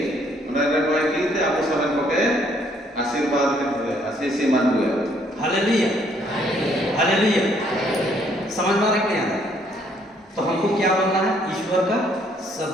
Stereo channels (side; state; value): both; normal; correlation 0.66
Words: उन्होंने कोई की थे आपको सब को के आशीर्वाद के आशीष मान हुए। Hallelujah, hallelujah. समझ में आ रहा है कि नहीं आ रहा? तो हमको क्या बोलना है? ईश्वर का